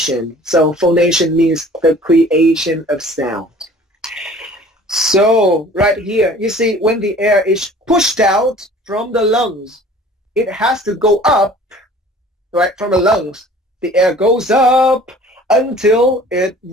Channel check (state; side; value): normal; both; correlation 0.48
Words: So phonation means the creation of sound. So right here, you see when the air is pushed out from the lungs, it has to go up, right, from the lungs. The air goes up until it